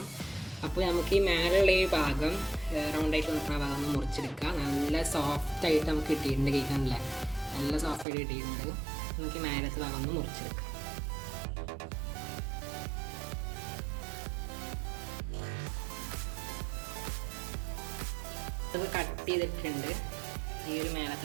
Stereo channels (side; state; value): left; drops out; at 8.1 s